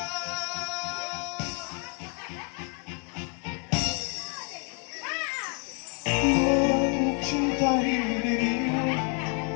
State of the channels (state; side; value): quieter; right; 38.6 dB